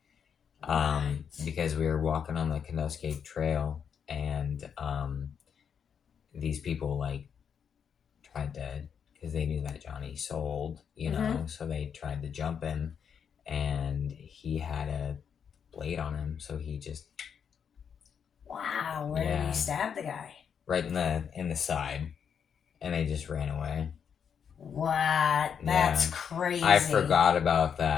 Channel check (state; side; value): quieter; right; 7.4 dB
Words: What? Because we were walking on the Canuscade Trail and these people like tried to, because they knew that Johnny sold, Mm-hmm. so they tried to jump him and he had a blade on him. So he just, Wow, where did he yeah, stab the guy? right in the side, and they just ran away. What? That's Yeah, I crazy. forgot about